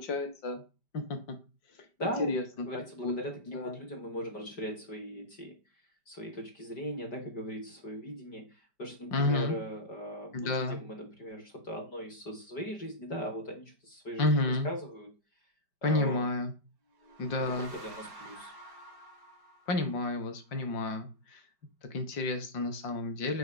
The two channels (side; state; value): right; late; 5.1 ms